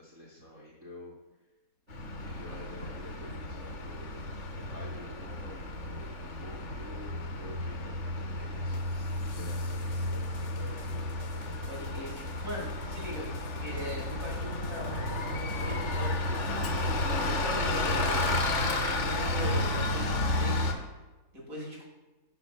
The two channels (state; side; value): late; left; 3.5 ms